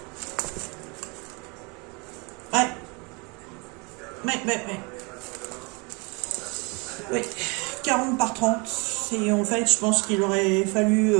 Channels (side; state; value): left; quieter; 29.8 dB